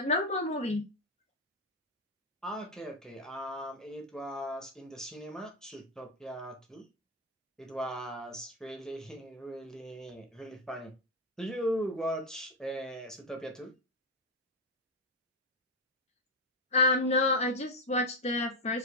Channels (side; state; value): both; normal; correlation 0.06